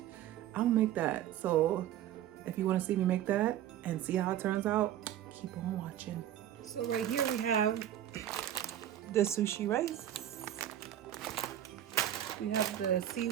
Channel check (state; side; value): quieter; left; 11.6 dB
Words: I'm gonna make that. So if you want to see me make that and see how it turns out, keep on watching. So right here we have the sushi rice. We have the